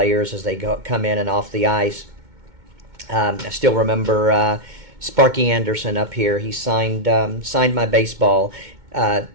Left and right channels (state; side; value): late; left; 2.2 ms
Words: as they come in and off the ice. I still remember Sparky Anderson up here. He signed my baseball.